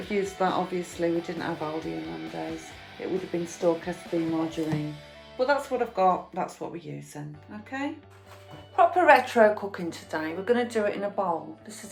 used that, obviously, we didn't have Aldi in them days. It would have been store SB margarine. But that's what I've got, that's what we're using, okay? Proper retro cooking today. We're going to do it in a bowl. This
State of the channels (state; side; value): identical; both; correlation 1.00